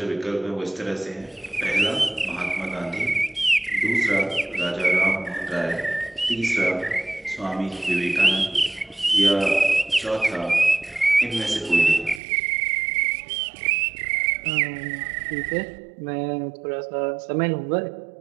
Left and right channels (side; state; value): left; drops out; at 12.2 s